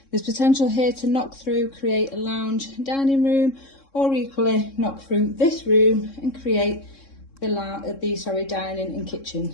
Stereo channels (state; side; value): late; right; 3.7 ms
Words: There's potential here to knock through, create a lounge dining room, or equally knock through this room and create the dining and